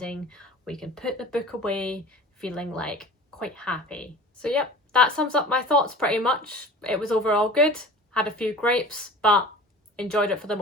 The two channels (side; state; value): both; normal; correlation 0.40